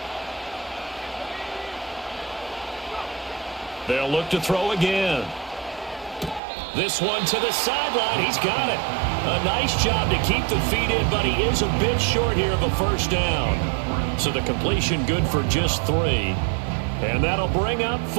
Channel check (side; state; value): left; drops out; at 6.4 s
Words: They'll look to throw again. This one to the sideline. He's got it. A nice job to keep the feet in, but he is a bit short here of a first down. So the completion good for just 3. And that'll bring up